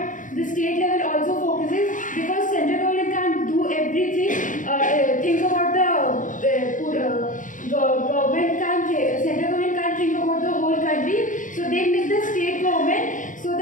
the state level also focuses, because central government can't do everything. Think about central government can't think about the whole country, so they make the state government so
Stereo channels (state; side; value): late; right; 0.38 ms